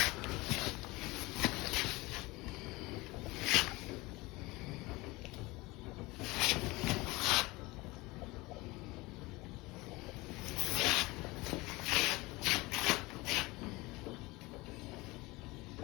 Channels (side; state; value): right; quieter; 22.2 dB